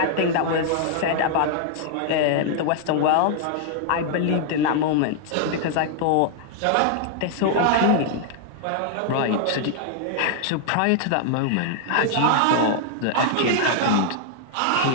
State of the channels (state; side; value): different; both; correlation 0.00